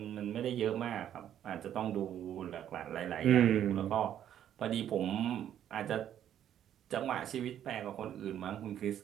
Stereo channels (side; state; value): left; quieter; 10.5 dB